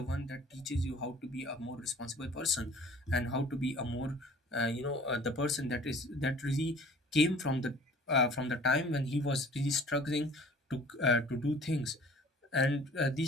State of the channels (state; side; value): normal; both; correlation 0.49